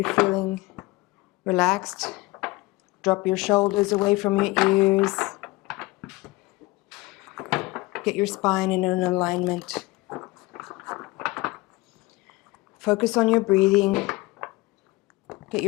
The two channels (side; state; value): right; quieter; 21.6 dB